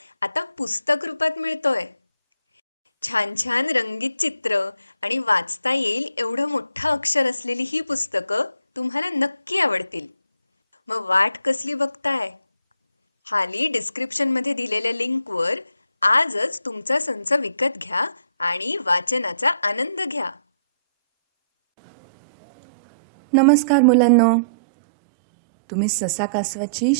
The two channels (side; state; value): both; inverted; correlation -0.62